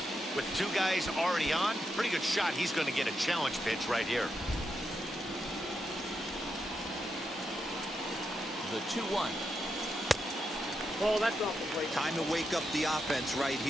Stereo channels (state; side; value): normal; both; correlation 0.84